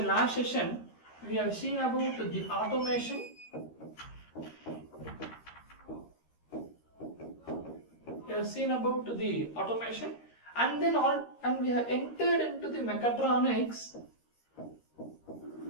automation. We have seen about the automation, and we have entered into the mechatronics.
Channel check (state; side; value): late; right; 13 ms